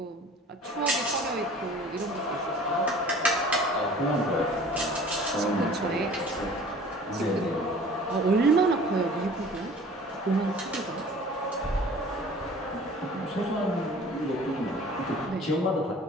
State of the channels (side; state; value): both; normal; correlation 0.47